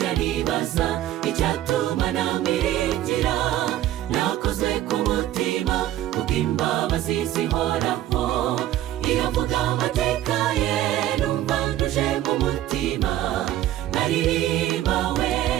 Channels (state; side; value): quieter; left; 13.3 dB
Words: nibaza icyatuma namwiringira, nakoze ku mutima kubw'imbabazi zihoraho, iyo mvuga amateka ye numva kumutima, nkaririmba we,